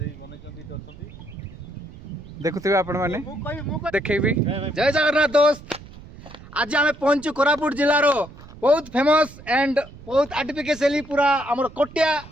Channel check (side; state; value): right; noise; rumble, 18 dB below the sound